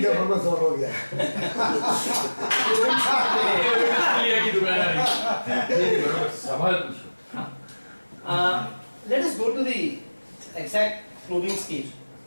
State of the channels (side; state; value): both; inverted; correlation -1.00